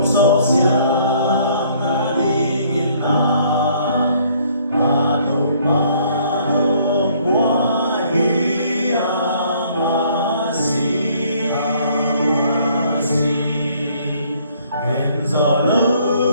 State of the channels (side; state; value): both; inverted; correlation -0.62